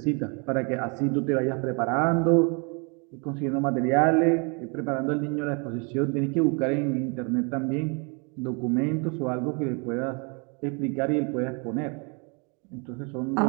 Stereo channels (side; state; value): left; quieter; 33.9 dB